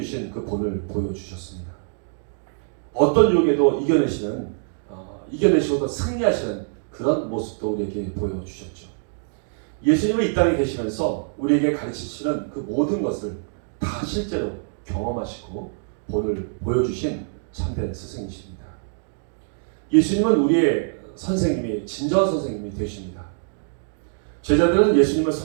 그 본을 보여주셨습니다. 어떤 유혹에도 이겨내시고도 승리하시는 그런 모습도 우리에게 보여주셨죠. 예수님은 이 땅에 계시면서 우리에게 가르치시는 그 모든 것을 다 실제로 경험하시고 본을 보여주신 참된 스승이십니다. 예수님은 우리의 선생님이 진정한 선생님이 되십니다. 제자들은 예수님을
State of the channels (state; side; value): silent; left; digital silence